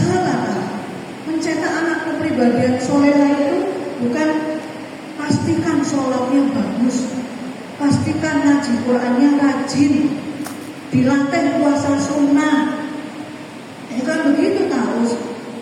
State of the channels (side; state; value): both; identical; correlation 1.00